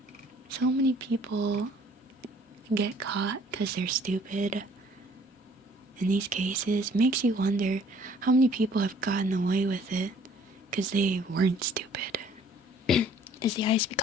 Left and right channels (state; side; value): normal; both; correlation 0.57